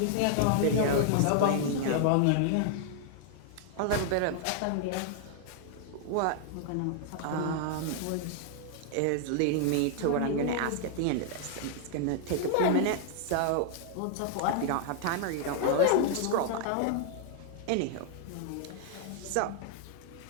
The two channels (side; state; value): both; different; correlation 0.00